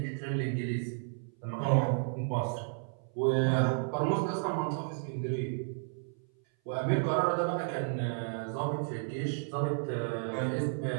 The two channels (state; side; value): silent; left; 56 dB below the other